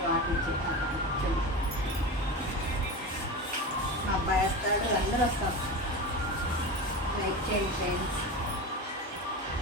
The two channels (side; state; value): both; normal; correlation 0.25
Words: మా అబ్బాయి వస్తాడు, అందరూ వస్తాం. లైక్ చేయండి ఫ్రెండ్స్.